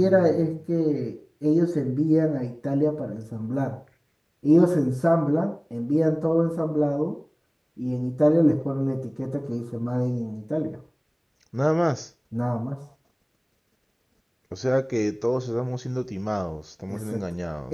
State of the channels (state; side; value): identical; both; correlation 1.00